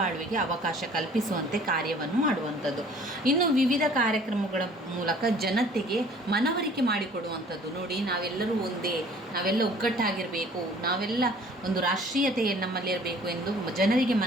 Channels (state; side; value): normal; both; correlation 0.52